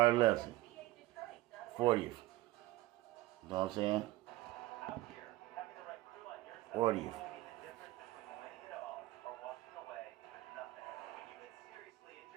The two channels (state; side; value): quieter; left; 17.8 dB